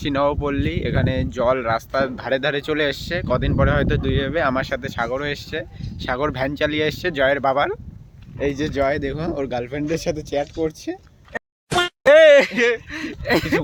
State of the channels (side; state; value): both; identical; correlation 1.00